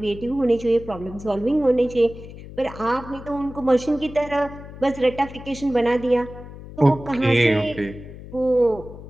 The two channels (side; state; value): left; noise; hum, 15 dB below the sound